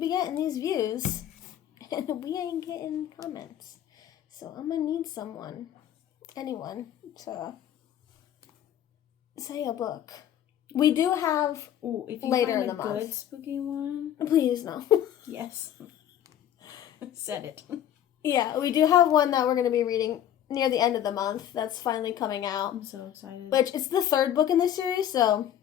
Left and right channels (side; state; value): right; quieter; 10.8 dB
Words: getting these views, and we ain't getting comments. So I'm going to need anyone, to say a book. We do have if you later find in the month. Good spooky one. Please, no. Yes. Said it. Yeah, we do have one that we're going to be reading near the end of the month. That's finally coming out. I'm so excited. Which, it's the third book in this series, so